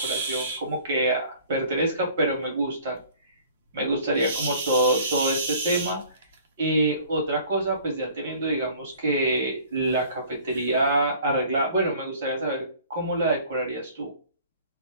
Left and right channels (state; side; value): inverted; both; correlation -0.51